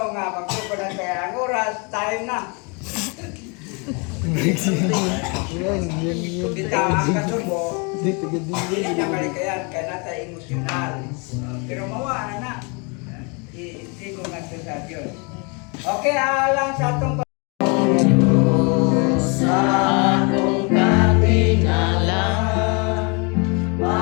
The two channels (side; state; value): right; quieter; 32.4 dB